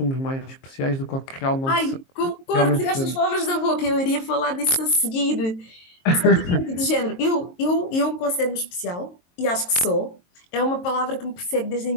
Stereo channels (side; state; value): right; late; 22 ms